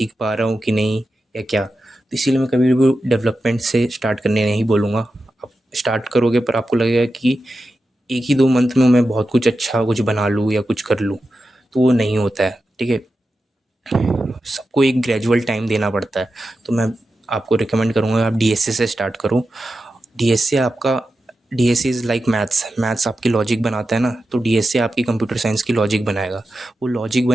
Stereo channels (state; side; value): normal; both; correlation 0.91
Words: पा रहा हूँ कि नहीं या क्या। तो इसीलिए मैं कभी भी डेवलपमेंट से स्टार्ट करने नहीं बोलूँगा। आप स्टार्ट करोगे पर आपको लगेगा कि 1 ही 2 मंथ में मैं बहुत कुछ अच्छा कुछ बना लूँ या कुछ कर लूँ, तो वो नहीं होता है। ठीक है, सबको एक ग्रेजुअल टाइम देना पड़ता है। तो मैं आपको रिकमेंड करूँगा आप डीएसए से स्टार्ट करो। डीएसए आपका DSA is like maths. Maths आपकी लॉजिक बनाता है ना, तो डीएसए आपकी कंप्यूटर साइंस की लॉजिक बनाएगा। वो लॉजिक